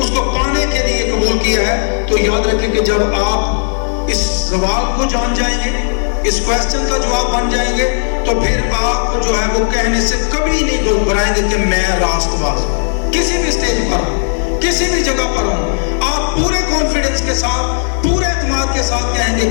کو پانے کے لیے قبول کیا ہے۔ تو یاد رکھیں کہ جب آپ اس سوال کو جان جائیں گے، اس کویسچن کا جواب بن جائیں گے، تو پھر آپ کو جو ہے وہ کہنے سے کبھی نہیں گھبرائیں گے کہ میں راست باز ہوں۔ کسی بھی سٹیج پر ہوں، کسی بھی جگہ پر ہوں، آپ پورے کانفیڈنس کے ساتھ، پورے اعتماد کے ساتھ کہیں گے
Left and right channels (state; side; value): silent; right; digital silence